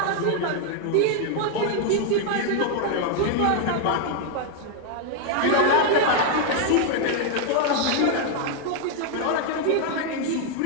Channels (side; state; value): both; different; correlation 0.00